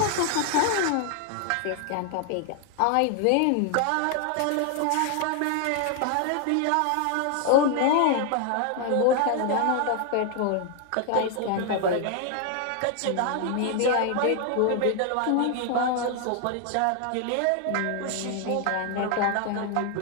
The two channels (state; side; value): different; both; correlation 0.00